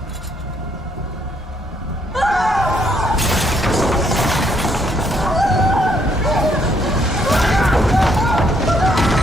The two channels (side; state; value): both; normal; correlation 0.70